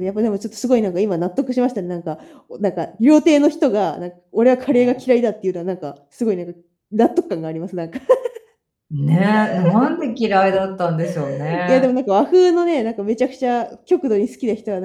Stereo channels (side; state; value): both; identical; correlation 1.00